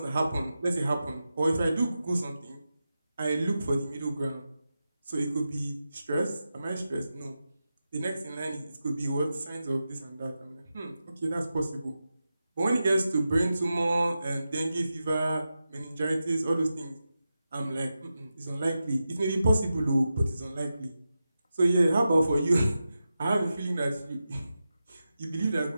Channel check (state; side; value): inverted; both; correlation -0.91